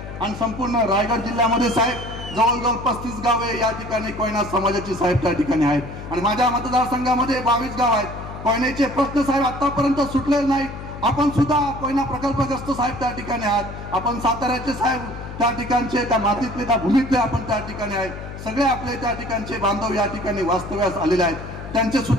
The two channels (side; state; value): left; noise; hum, 11 dB below the sound